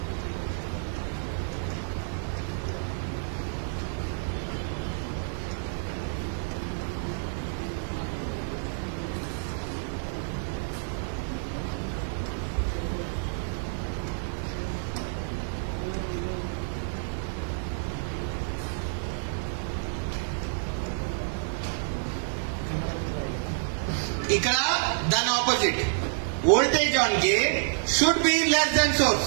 ఇక్కడ దాని opposite voltage on gate should be less than source.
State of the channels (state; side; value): silent; left; digital silence